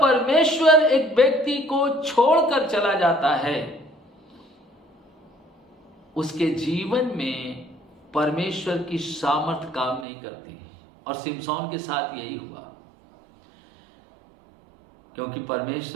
परमेश्वर एक व्यक्ति को छोड़कर चला जाता है, उसके जीवन में परमेश्वर की सामर्थ काम नहीं करती। और सिमसोन के साथ यही हुआ, क्योंकि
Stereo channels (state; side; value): drops out; left; at 10.1 s